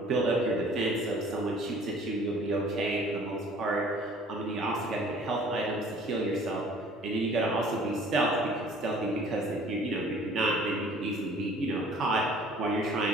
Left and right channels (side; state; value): both; normal; correlation 0.52